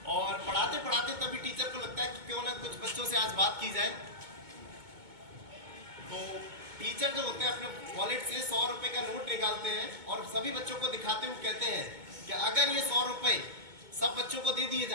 और पढ़ाते पढ़ाते तभी टीचर को लगता है कि क्यों ना कुछ बच्चों से आज बात की जाए। तो टीचर जो होते हैं अपने वॉलेट से 100 रुपए का नोट निकालते हैं और सभी बच्चों को दिखाते हुए कहते हैं कि अगर ये 100 रुपए सब बच्चों को दे दिए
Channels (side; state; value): left; late; 2.2 ms